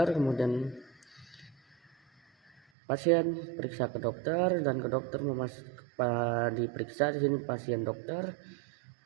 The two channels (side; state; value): left; drops out; at 2.6 s